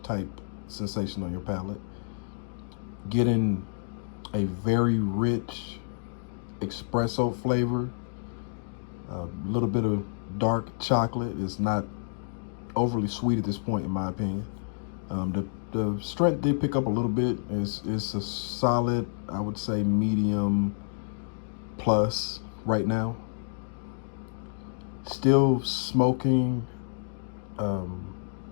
type sensation on your palate. Getting a very rich espresso flavor, a little bit of dark chocolate. Is not overly sweet at this point, in my opinion. The strength did pick up a little bit. It's a solid, I would say, medium plus right now. Still smoking,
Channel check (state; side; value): silent; right; digital silence